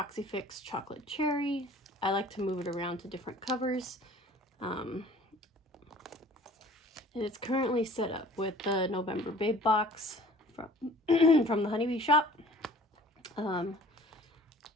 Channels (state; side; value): normal; both; correlation 0.48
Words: Fix chocolate cherry. I like to move it around to different covers. And it's currently set up with the November Babe box from, from the Honeybee shop. And